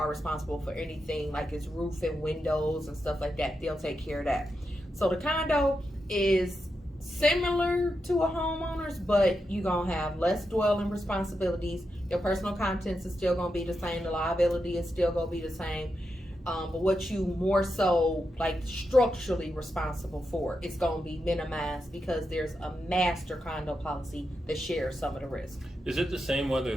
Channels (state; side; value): normal; both; correlation 0.86